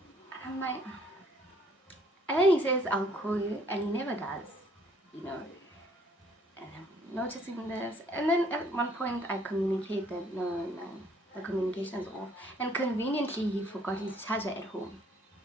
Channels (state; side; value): normal; both; correlation 0.62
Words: And I'm like, and then he says, I'll call you, and he never does, you know. And I'm noticing this. And then at one point I communicate that, no, the communication is off. And conveniently, he forgot his charger at home.